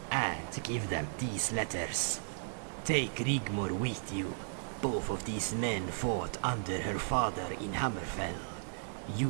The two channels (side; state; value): left; silent; digital silence